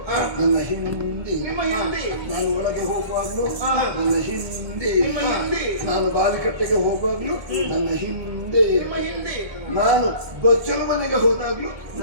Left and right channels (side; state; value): left; late; 1.2 ms